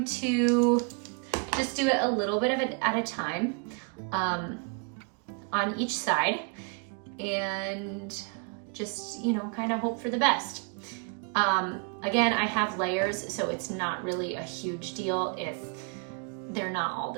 to just do it a little bit of it at a time on each side, and just, you know, kind of hope for the best. Again, I have layers, so it's not really a huge deal if they're not all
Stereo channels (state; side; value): quieter; left; 35.3 dB